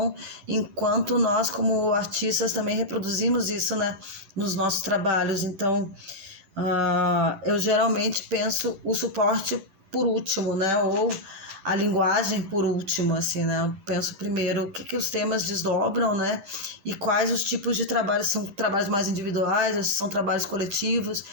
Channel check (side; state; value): left; late; 10 ms